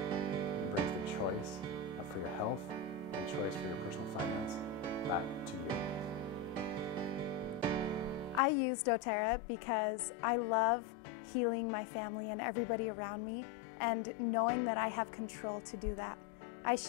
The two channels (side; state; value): right; drops out; at 8.4 s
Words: brings the choice for your health and choice for your personal finance back to you. I use doTERRA because I love healing my family and everybody around me, and knowing that I have control to do that. I